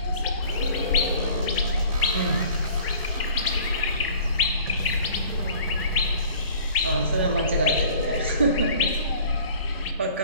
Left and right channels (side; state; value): both; inverted; correlation -0.49